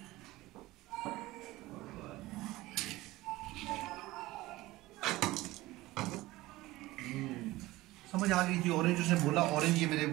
समझ आ गई थी, ऑरेंज उसने बोला, ऑरेंज ये मेरे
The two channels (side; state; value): left; quieter; 18.6 dB